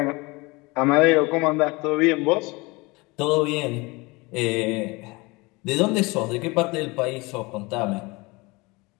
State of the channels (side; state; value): right; quieter; 24.9 dB